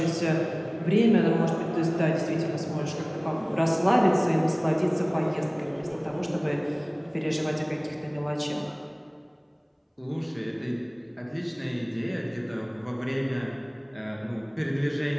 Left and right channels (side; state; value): both; identical; correlation 1.00